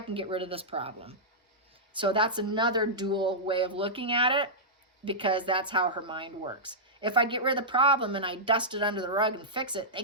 get rid of this problem. So that's another dual way of looking at it, because that's how her mind works. If I get rid of the problem and I dust it under the rug and fix it, they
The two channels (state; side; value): normal; both; correlation -0.13